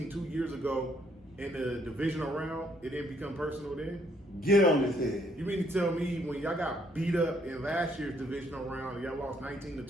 2 years ago in the divisional round, it didn't become personal then? Get on his head. You mean to tell me when y'all got beat up in last year's divisional round and y'all lost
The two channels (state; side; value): normal; both; correlation 0.68